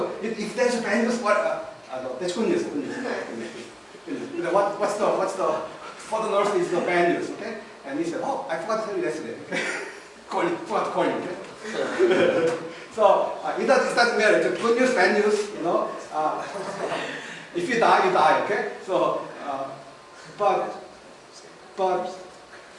if there's a bad news, what? No, that's good news. What on earth is the bad news, okay? And he said, oh, I forgot to tell you yesterday, okay? Forgot to call you, okay? So it doesn't matter. It's good news, bad news, you know. If you die, you die, okay? So, but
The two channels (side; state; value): both; identical; correlation 1.00